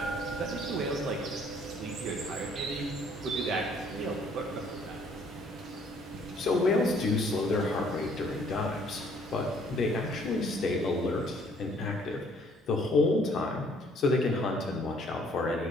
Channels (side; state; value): both; normal; correlation 0.61